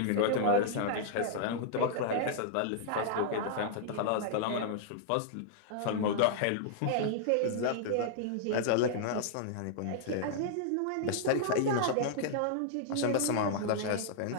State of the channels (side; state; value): both; different; correlation -0.02